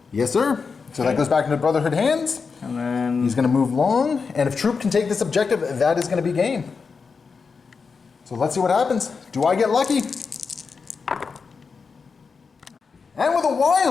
Yes, sir. So that goes back into Brotherhood hands. And then... He's gonna move long, and if Troope can take this objective, that is gonna be game. So let's see what happens. Do I get lucky? And with a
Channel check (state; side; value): quieter; right; 5.2 dB